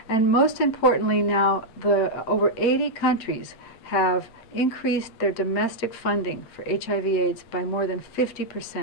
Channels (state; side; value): late; right; 8.8 ms